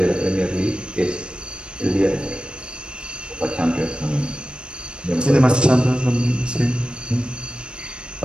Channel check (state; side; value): late; left; 0.055 ms